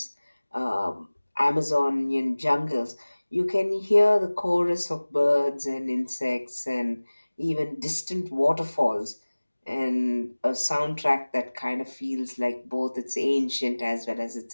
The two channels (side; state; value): both; inverted; correlation -1.00